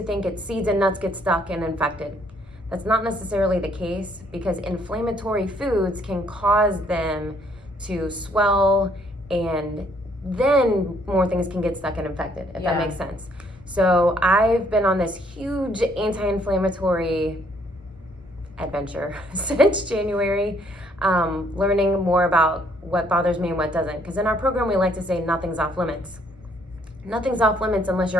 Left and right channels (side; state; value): both; normal; correlation 0.66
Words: think it's seeds and nuts get stuck and infected. That's not necessarily the case because inflammatory foods can cause them to swell and then more things can get stuck and infected, if that makes sense. So I've been on this huge anti-inflammatory adventure since January, learning more about what bothers me and what doesn't. Because in our program, we like to say nothing's off limits. Nothing's off limits unless